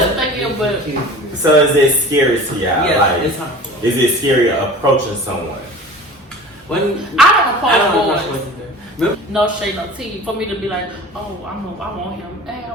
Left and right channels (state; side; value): normal; both; correlation 0.40